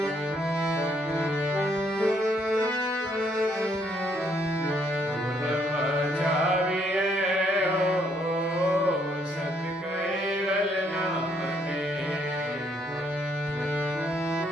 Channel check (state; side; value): normal; both; correlation 0.70